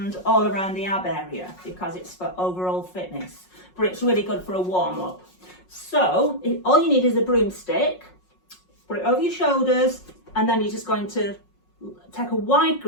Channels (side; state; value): right; late; 5.5 ms